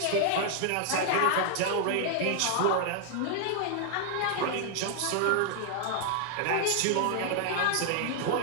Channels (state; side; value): different; both; correlation 0.00